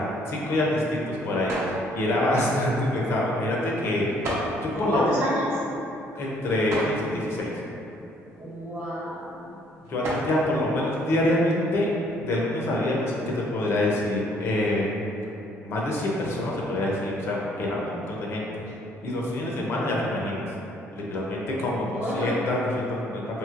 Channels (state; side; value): normal; both; correlation 0.64